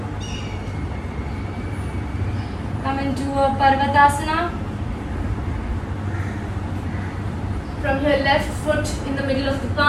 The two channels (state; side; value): identical; both; correlation 1.00